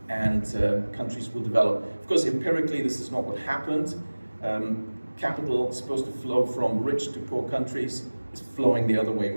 and countries will develop. Of course, empirically, this is not what happened. Capital supposed to flow from rich to poor countries is flowing the other way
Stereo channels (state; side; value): inverted; both; correlation -1.00